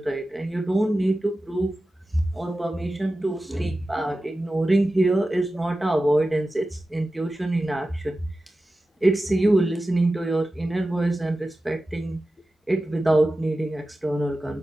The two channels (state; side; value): normal; both; correlation 0.94